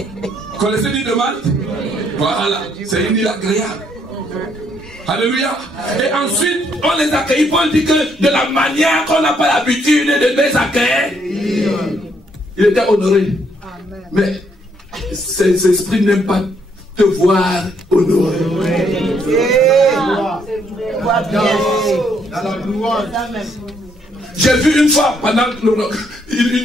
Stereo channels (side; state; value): both; normal; correlation 0.71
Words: Connaissez l'île de Malte? Voilà, c'est une île agréable. Alléluia. Et ensuite, on les accueille. Paul dit que de la manière qu'on n'a pas l'habitude de les accueillir, il était honoré. Mais ces esprits n'aiment pas te voir honoré. J'ai vu une fois, pendant